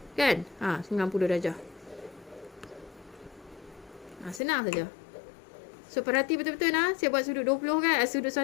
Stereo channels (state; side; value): drops out; right; at 4.4 s